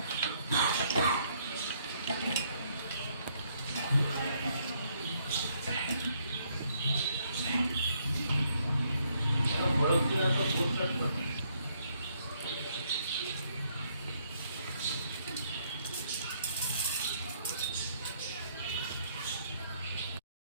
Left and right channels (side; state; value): both; inverted; correlation -0.70